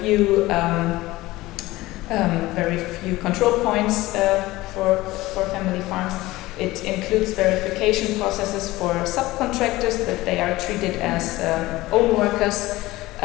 few control points for family farms. It includes verification processes for subcontractors, that they are treated as own workers,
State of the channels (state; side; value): quieter; right; 18.6 dB